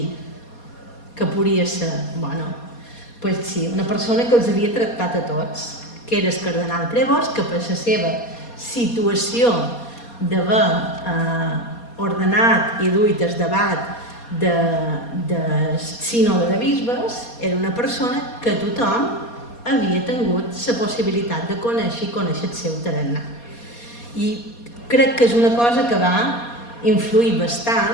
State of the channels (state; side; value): late; right; 4.2 ms